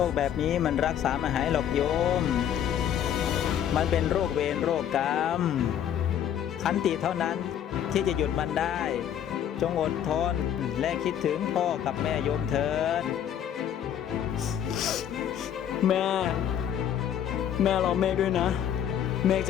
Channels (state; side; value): quieter; right; 9.8 dB